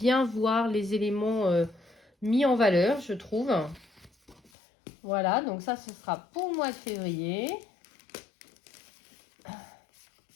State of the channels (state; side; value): drops out; right; at 4.5 s